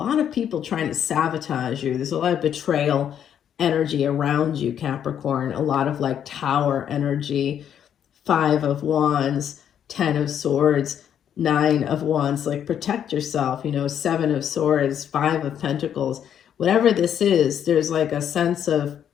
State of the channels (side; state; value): right; quieter; 9.2 dB